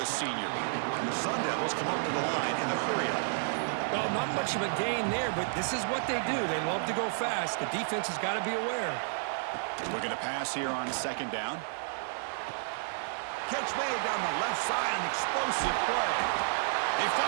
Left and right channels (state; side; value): silent; left; digital silence